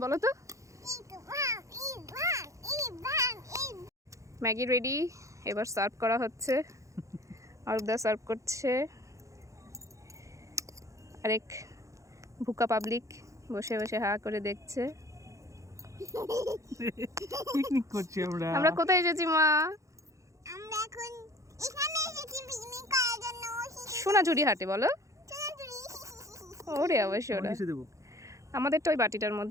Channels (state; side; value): late; left; 0.15 ms